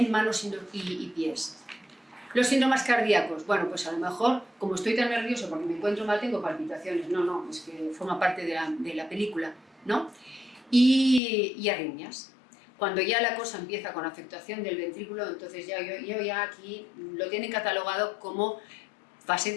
manos y pies. Los síntomas cardíacos, bueno, pues a lo mejor, como estoy tan nervioso porque me encuentro mal, tengo palpitaciones. No, es que forma parte de la película, ¿no? Y arritmias. Cuando ya la cosa empieza con afectación del ventrículo, entonces yo ya aquí lo tienen catalogado como fase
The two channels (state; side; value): drops out; right; at 11.2 s